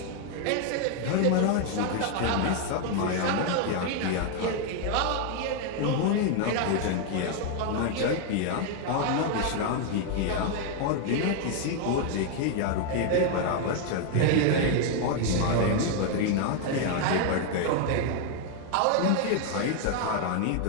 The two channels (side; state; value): both; different; correlation 0.00